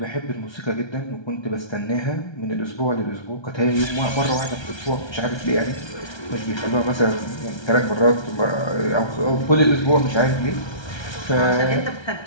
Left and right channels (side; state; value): right; late; 1.3 ms